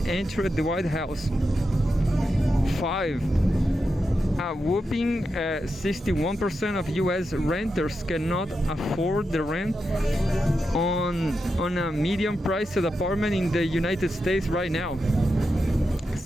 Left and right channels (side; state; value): both; normal; correlation 0.88